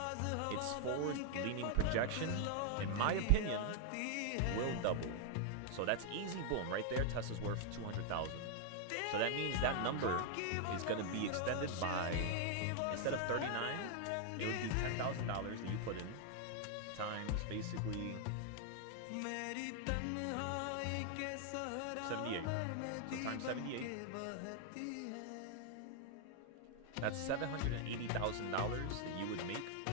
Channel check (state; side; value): different; both; correlation 0.00